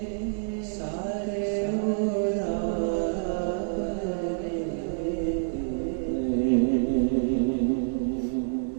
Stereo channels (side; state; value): left; silent; 60 dB below the other